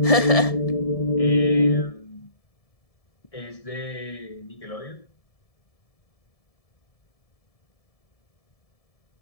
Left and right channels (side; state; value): right; late; 1.7 ms